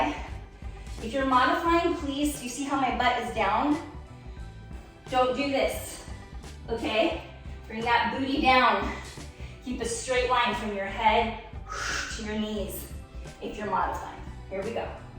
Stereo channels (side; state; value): both; identical; correlation 1.00